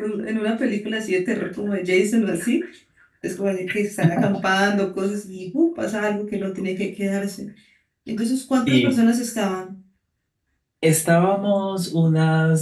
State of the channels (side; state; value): both; identical; correlation 1.00